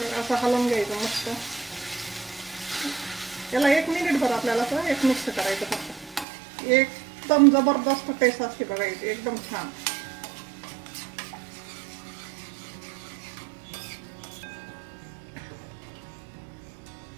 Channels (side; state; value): left; drops out; at 6.2 s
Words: असं हलवून घ्यायचं मस्त. याला 1 मिनिटभर आपल्याला असं एक मिक्स करायचं फक्त. एकदम जबरदस्त टेस्ट असते बघा याची एकदम छान.